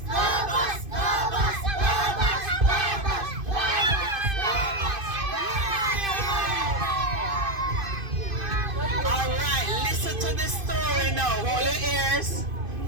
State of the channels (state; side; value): late; left; 2.5 ms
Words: Alright, listen to the story now. Hold your ears.